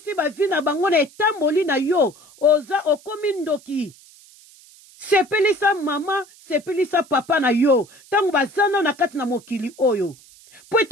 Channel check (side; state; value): right; noise; hiss, 25 dB below the sound